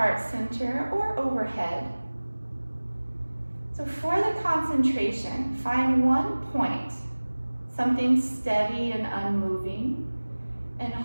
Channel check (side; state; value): both; inverted; correlation -1.00